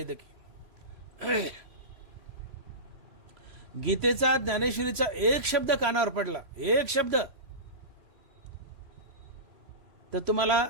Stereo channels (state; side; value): late; left; 3.0 ms